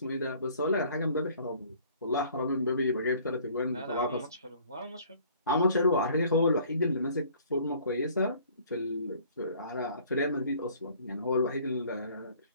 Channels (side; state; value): both; inverted; correlation -0.55